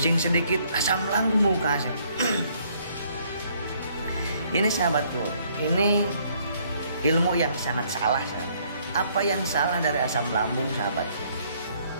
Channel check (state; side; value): inverted; both; correlation -0.65